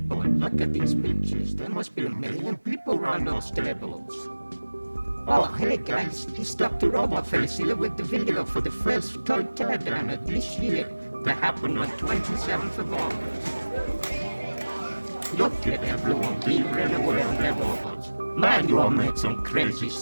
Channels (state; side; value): inverted; both; correlation -1.00